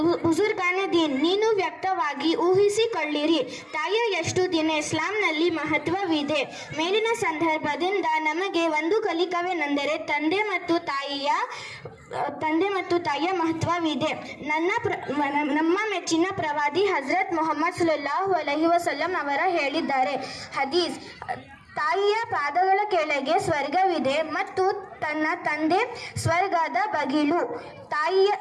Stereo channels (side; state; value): both; identical; correlation 1.00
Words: ಬುಜುರ್ಗಾನೆ ದೀನ್, ನೀನು ವ್ಯಕ್ತವಾಗಿ ಊಹಿಸಿಕೊಳ್ಳಿರಿ, ತಾಯಿಯ ಎಷ್ಟು ದಿನ ಇಸ್ಲಾಂನಲ್ಲಿ ಮಹತ್ವವಿದೆ. ಮೇಲಿನ ಸಂದರ್ಭದಿಂದ ನಮಗೆ ಒಂದು ಕಲಿಕವೇನೆಂದರೆ ತಂದೆ ಮತ್ತು ತಾಯಿಯ ಮಹತ್ವವಿದೆ. ನಮ್ಮ ಮೆಚ್ಚಿನ ಪ್ರವಾದಿ ಹಜರತ್ ಮೊಹಮ್ಮದ್ ಸಲ್ಲಲ್ಲಾಹು ಅಲೈಹಿ ವಸಲ್ಲಂ ಅವರ ಹೇಳಿದ್ದಾರೆ. ಹದೀಸ್, ತಾಯಿಯ ಪಾದಗಳ ಕೆಳಗೆ ಸ್ವರ್ಗವಿದೆ ಮತ್ತು ತನ್ನ ತಂದೆ ಸ್ವರ್ಗದ ಬಗಿಲು.